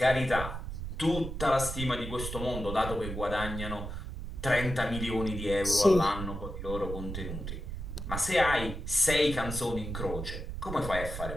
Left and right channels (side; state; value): right; noise; rumble, 6 dB below the sound